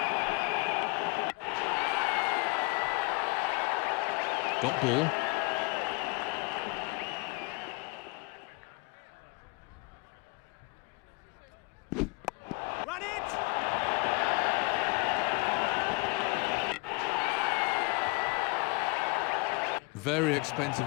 Got ball. Run it! Very expensive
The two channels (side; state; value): right; quieter; 27.1 dB